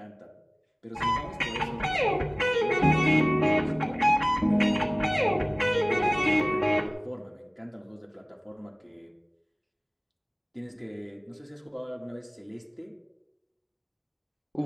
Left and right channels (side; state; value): both; identical; correlation 1.00